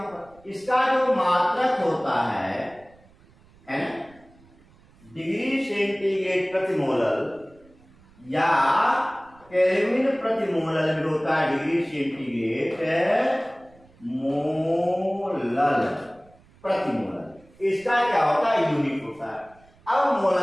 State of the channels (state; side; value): noise; right; rumble, 28 dB below the sound